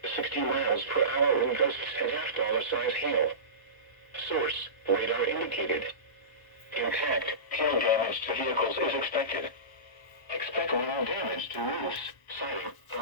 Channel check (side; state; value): right; late; 1.0 ms